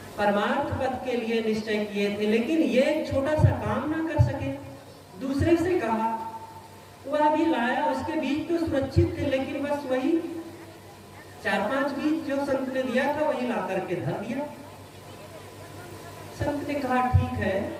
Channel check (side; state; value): both; identical; correlation 1.00